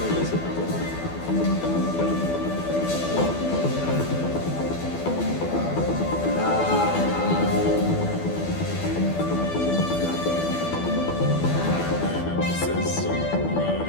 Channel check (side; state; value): right; late; 12 ms